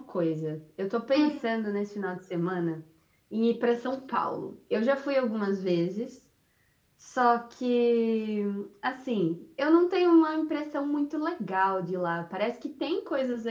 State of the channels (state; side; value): identical; both; correlation 1.00